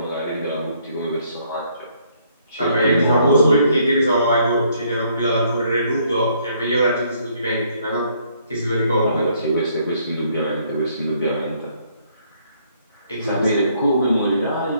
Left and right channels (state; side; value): inverted; both; correlation -0.67